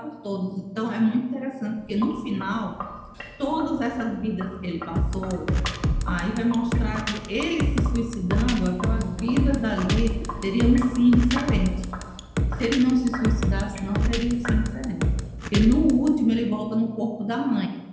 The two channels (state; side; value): identical; both; correlation 1.00